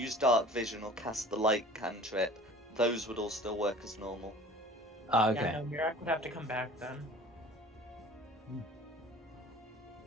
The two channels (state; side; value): normal; both; correlation 0.44